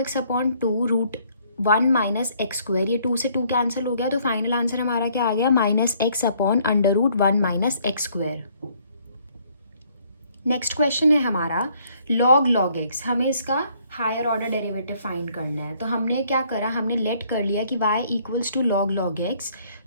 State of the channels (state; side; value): inverted; both; correlation -0.64